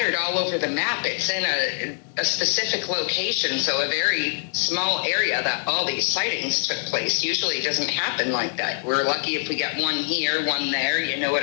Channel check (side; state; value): right; silent; 63 dB below the other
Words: all over the map. It's in a specific location, so a very small area that all these sightings took place. Usually it doesn't happen like that. We're lucky if we get one here, one there, you know